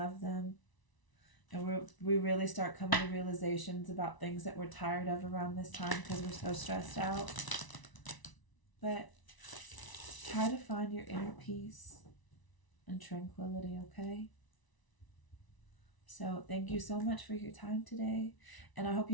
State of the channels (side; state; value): right; late; 1.0 ms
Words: them. And we really start coming to realizations about things that we're tired of around this time because we're so stressed out. But try to find your inner peace and tranquility, okay? So thank you so much for your time today, and I hope